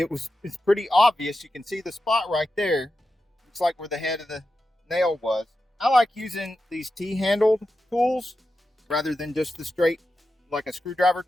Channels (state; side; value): normal; both; correlation 0.90